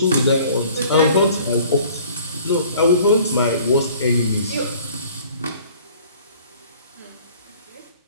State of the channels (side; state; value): both; inverted; correlation -0.52